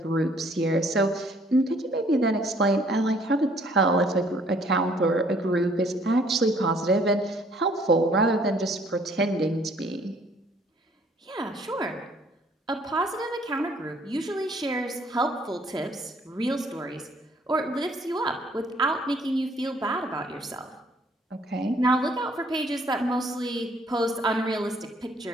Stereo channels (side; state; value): both; normal; correlation 0.61